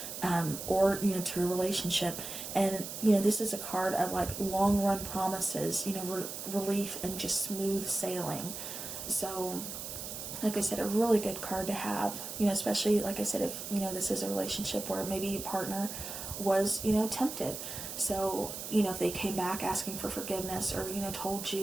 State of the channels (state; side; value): noise; right; hiss, 8 dB below the sound